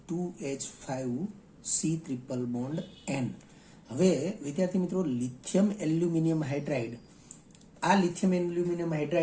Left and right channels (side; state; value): both; identical; correlation 1.00